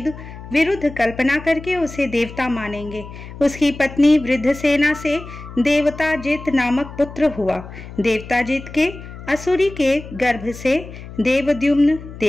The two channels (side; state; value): left; noise; hum, 14 dB below the sound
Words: विरुद्ध कल्पना करके उसे देवता मानेंगे। उसकी पत्नी वृद्धसेना से देवताजित नामक पुत्र हुआ। देवताजित के असुरी के गर्भ से देवद्युम्न,